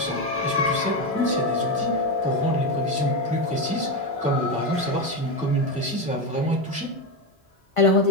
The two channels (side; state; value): both; normal; correlation 0.12